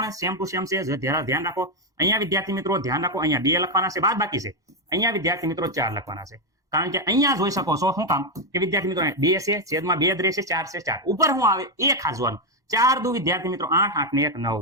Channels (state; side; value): late; left; 1.1 ms